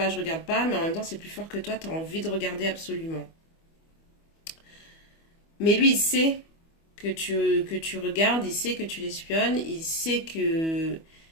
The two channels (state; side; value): late; right; 25 ms